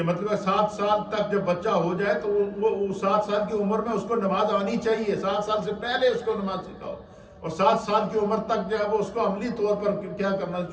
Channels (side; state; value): both; identical; correlation 1.00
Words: مطلب 7 سال تک جب بچہ ہو جائے تو وہ 7 سال کی عمر میں اس کو نماز آنی چاہیے. 7 سال سے پہلے اس کو نماز سکھاؤ اور 7 سال کی عمر تک جو ہے وہ اس کو عملی طور پر کیا کرنا